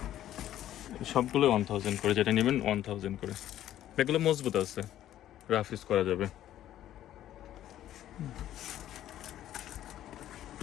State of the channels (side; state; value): right; quieter; 12.3 dB